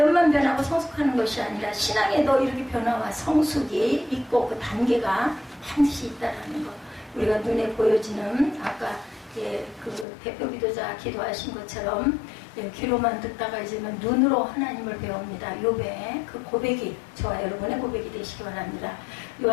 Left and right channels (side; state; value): right; drops out; at 10.1 s